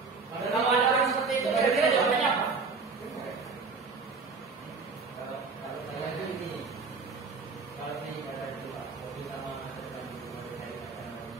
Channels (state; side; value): quieter; left; 4.6 dB